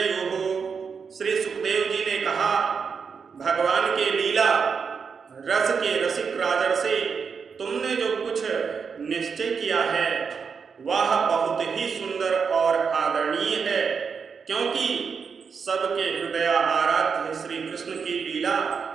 श्री सुखदेव जी ने कहा, भगवान के लीला रस के रसिक राजर्षि, तुमने जो कुछ निश्चय किया है वह बहुत ही सुंदर और आदरणीय है, क्योंकि सबके हृदय आराध्य श्री कृष्ण की लीला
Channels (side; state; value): left; quieter; 5.9 dB